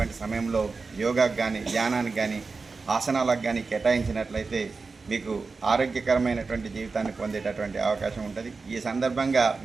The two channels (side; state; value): left; quieter; 4.3 dB